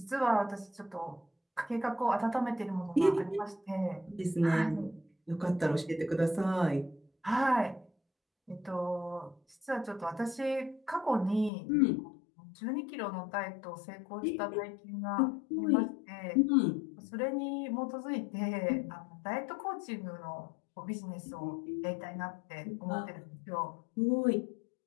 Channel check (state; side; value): drops out; right; at 11.5 s